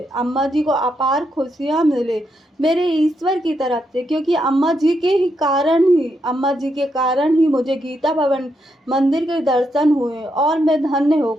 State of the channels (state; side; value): normal; both; correlation 0.80